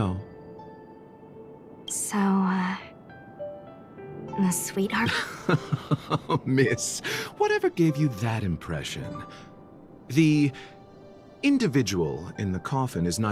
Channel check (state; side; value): identical; both; correlation 1.00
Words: So, a sweetheart? Miss, whatever gave you that impression? The individual in the coffin is